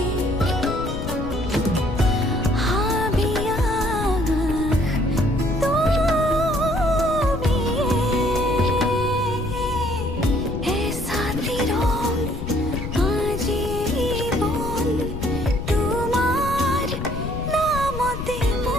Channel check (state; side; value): noise; left; rumble, 6 dB below the sound